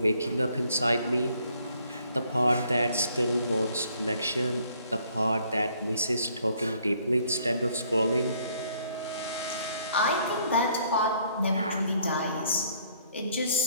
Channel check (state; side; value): inverted; both; correlation -0.64